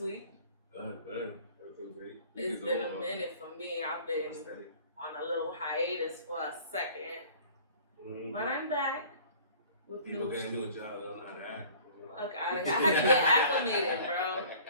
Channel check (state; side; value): inverted; both; correlation -0.48